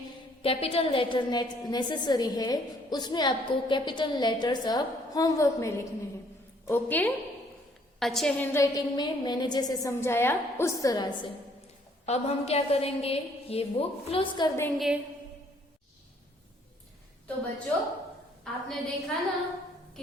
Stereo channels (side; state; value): both; normal; correlation 0.63